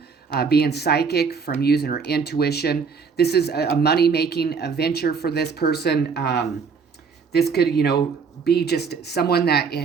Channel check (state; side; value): quieter; left; 5.5 dB